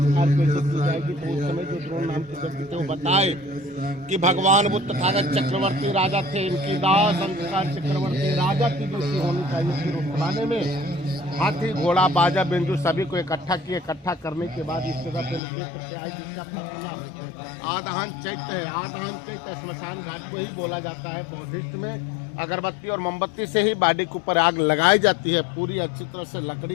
कैसे की जाएगी। तो उस समय जो द्रोण नाम के व्यक्ति थे वो बताए कि भगवान बुद्ध तथागत चक्रवर्ती राजा थे, इनकी दाह संस्कार चक्रवर्ती राजा की जैसी होनी चाहिए। फिर उस जमाने में हाथी घोड़ा बाजा बिंजू सभी को इकट्ठा किए। इकट्ठा करने के बाद इस जगह पे लोग लेकर के आए, जिसका नाम आदाहन चैत्य है। आदाहन चैत्य स्मशान घाट को ही बोला जाता है। बौद्धिस्ट में अगरबत्ती और मोमबत्ती से ही बॉडी के ऊपर आग लगाई जाती है। पूरी अच्छी तरह से लकड़ी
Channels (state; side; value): drops out; right; at 15.4 s